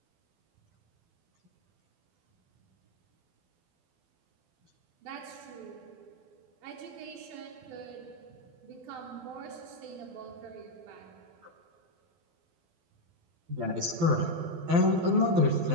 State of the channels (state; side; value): late; left; 12 ms